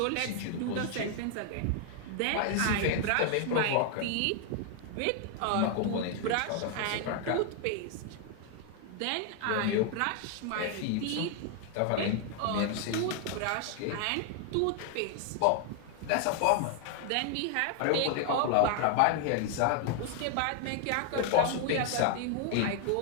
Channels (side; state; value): both; different; correlation 0.00